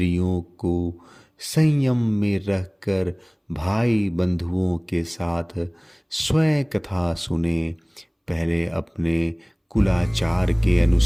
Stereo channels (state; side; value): identical; both; correlation 1.00